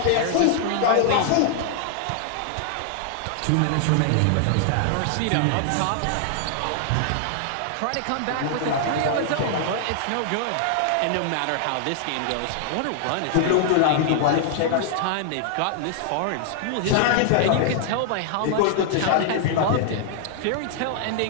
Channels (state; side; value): different; both; correlation -0.01